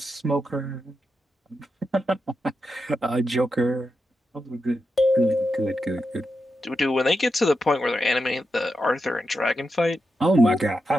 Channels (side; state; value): both; normal; correlation 0.87